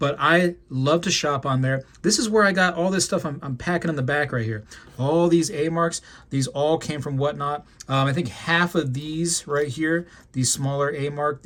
I love to shop on there. This is where I got all this stuff I'm packing in the back right here. All these A-marks, these all came from Whatnot. I think half of these right here, these smaller A-mark,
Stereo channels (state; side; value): identical; both; correlation 1.00